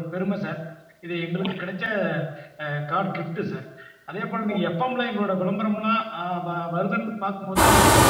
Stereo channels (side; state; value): both; identical; correlation 1.00